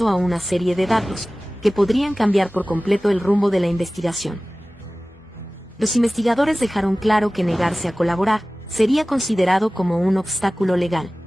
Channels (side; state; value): both; normal; correlation 0.97